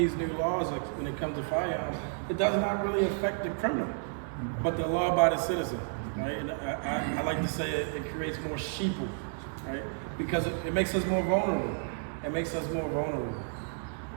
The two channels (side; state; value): left; silent; digital silence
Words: new laws, like when it comes to firearms, it does not really affect the criminal, but the law-abiding citizen, right? And I like to say it creates more sheeple, right? Because it makes us more vulnerable. It makes us more vulnerable.